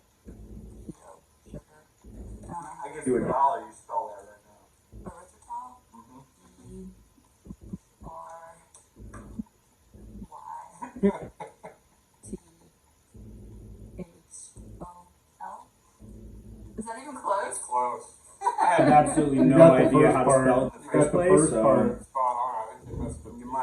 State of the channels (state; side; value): identical; both; correlation 1.00